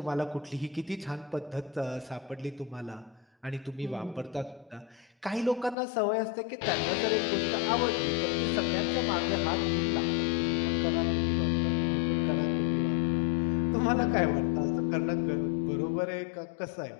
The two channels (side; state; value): right; drops out; at 5.8 s